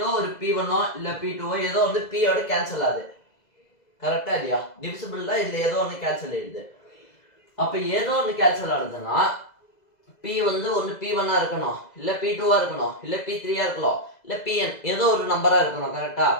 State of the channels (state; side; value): late; right; 2.0 ms